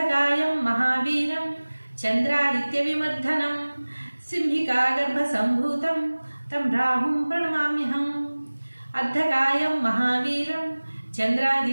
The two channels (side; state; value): both; inverted; correlation -1.00